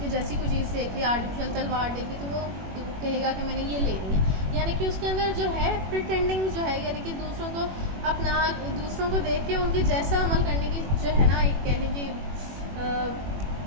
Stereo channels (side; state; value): left; late; 21 ms